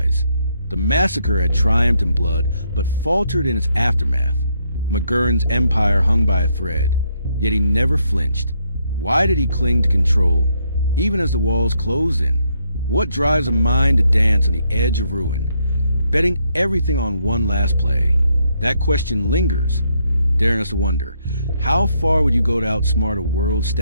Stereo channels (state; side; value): inverted; both; correlation -0.75